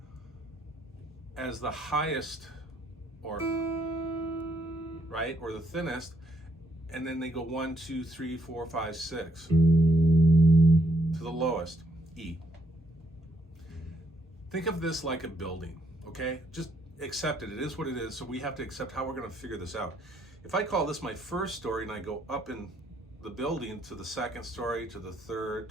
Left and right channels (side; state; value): both; normal; correlation 0.71